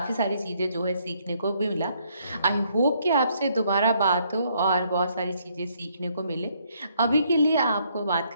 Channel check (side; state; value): both; inverted; correlation -0.69